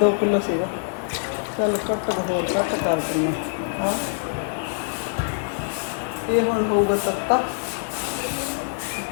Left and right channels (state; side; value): silent; right; digital silence